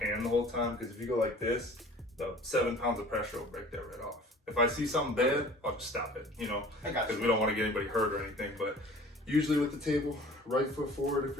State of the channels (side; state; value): both; normal; correlation 0.47